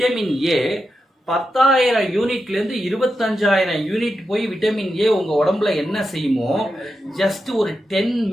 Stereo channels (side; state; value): both; normal; correlation 0.88